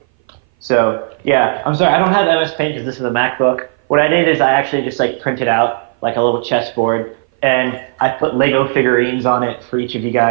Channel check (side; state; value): left; silent; 59 dB below the other